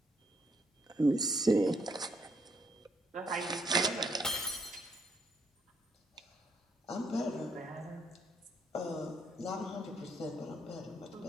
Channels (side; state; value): both; normal; correlation 0.72